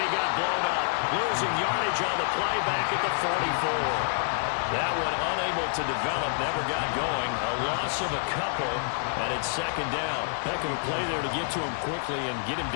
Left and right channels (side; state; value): right; silent; digital silence